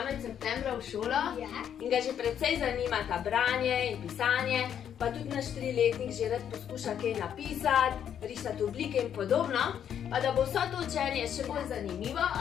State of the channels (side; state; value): right; quieter; 9.1 dB